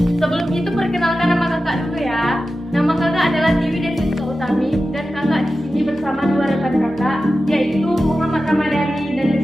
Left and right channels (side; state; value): both; normal; correlation 0.93